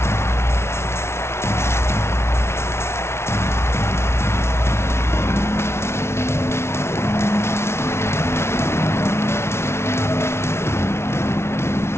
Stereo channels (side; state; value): right; late; 0.12 ms